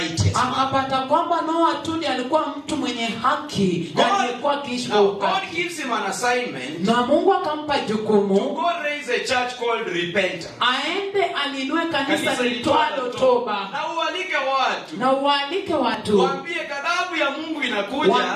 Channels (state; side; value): identical; both; correlation 1.00